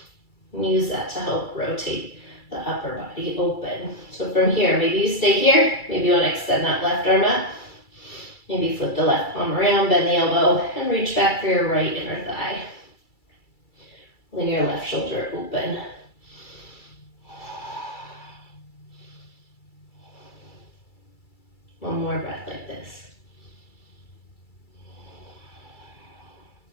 And use that to help rotate the upper body open. So from here, maybe you stay here, maybe you want to extend that left arm up. Maybe flip the left palm around, bend the elbow, and reach back for your right inner thigh. Lean your left shoulder open. One more breath like this.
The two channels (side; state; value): right; late; 2.3 ms